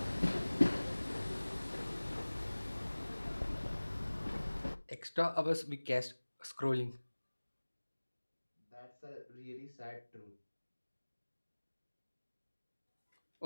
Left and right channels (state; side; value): inverted; both; correlation -1.00